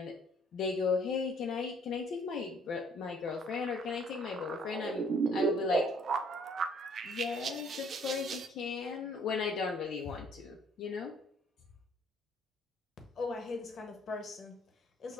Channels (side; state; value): both; normal; correlation 0.60